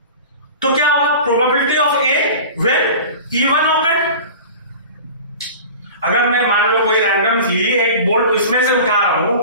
तो क्या होगा? Probability of A when E1 awkward. अगर मैं मान लो कोई रैंडमली एक बोल्ट इसमें से उठा रहा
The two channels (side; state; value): both; inverted; correlation -0.37